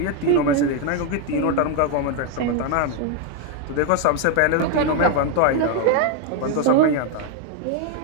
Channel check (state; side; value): different; both; correlation 0.01